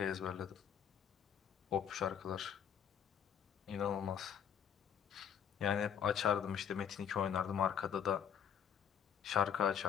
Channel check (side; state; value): right; quieter; 8.3 dB